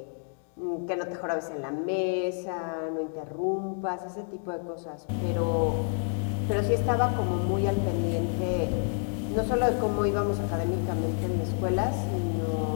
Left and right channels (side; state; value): right; silent; 56 dB below the other